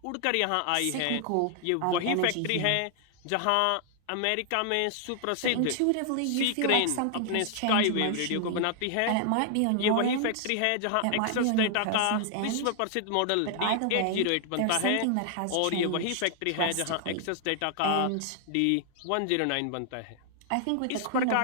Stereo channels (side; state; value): both; different; correlation 0.00